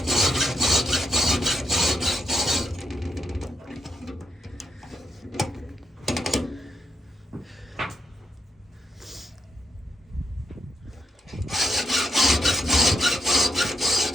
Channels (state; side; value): normal; both; correlation 0.81